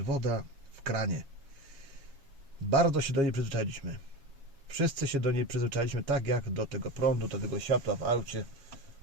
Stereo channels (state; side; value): late; left; 7.2 ms